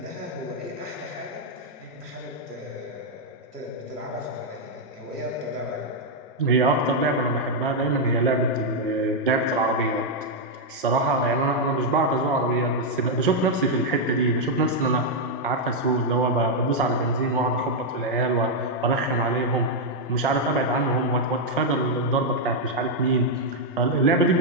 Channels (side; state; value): both; normal; correlation -0.01